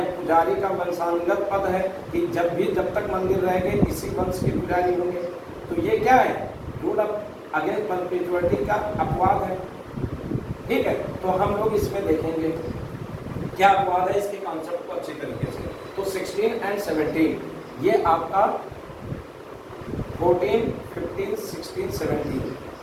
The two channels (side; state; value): both; identical; correlation 1.00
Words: पुजारी का वंशानुगत पद है कि जब तक मंदिर रहेंगे इसी वंश के पुजारी होंगे। तो ये क्या है? रूल अगेंस्ट परपेचुअलिटी का अपवाद है। ठीक है, तो हम लोग इसमें देखेंगे क्या अपवाद है, इसके कॉन्सेप्ट को अच्छी तरीके से। तो 16 और 17 ये आपका 14, 15, 16,